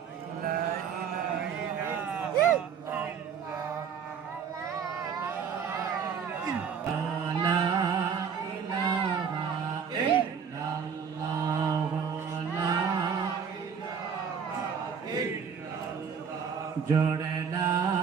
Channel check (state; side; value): quieter; left; 6.9 dB